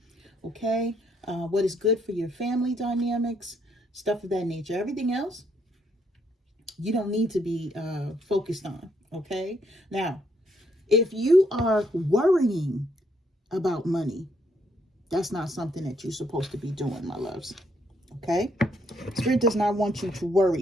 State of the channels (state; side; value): normal; both; correlation 0.72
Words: okay? What is good for your family dynamics, stuff of that nature. Everything else, you don't need to be focused on, okay? Now, if you are worrying about money, that's not something that you're supposed to be doing, my loves, okay? Spirit does not want you to